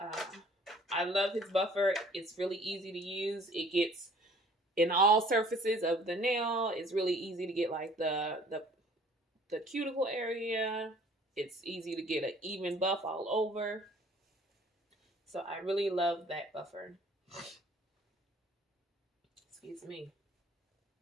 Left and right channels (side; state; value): both; normal; correlation 0.54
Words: I love his buffer. It's really easy to use. It gets in all surfaces of the nail. It's really easy to get like the cuticle area. It's easy to get an even buff all over. So I really love that buffer. Excuse me.